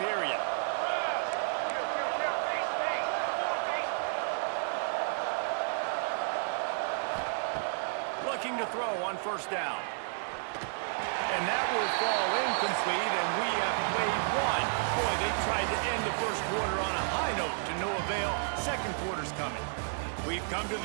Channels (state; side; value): silent; left; digital silence